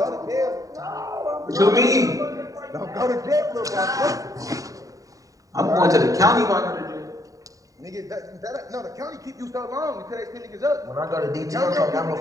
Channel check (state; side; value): late; left; 0.16 ms